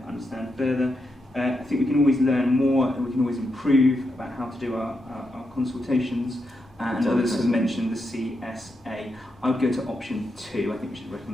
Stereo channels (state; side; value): normal; both; correlation 0.84